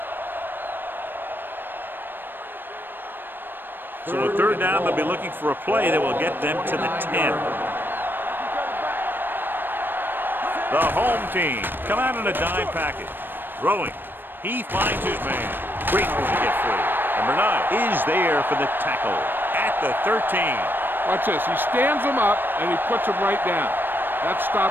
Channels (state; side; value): late; left; 0.095 ms